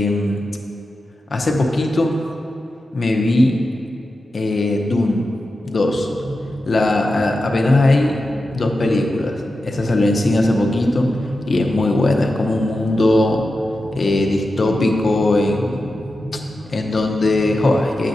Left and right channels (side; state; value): both; normal; correlation 0.91